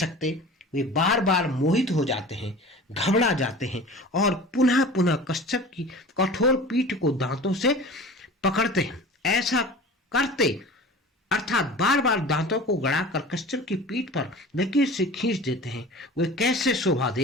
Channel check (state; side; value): normal; both; correlation 0.39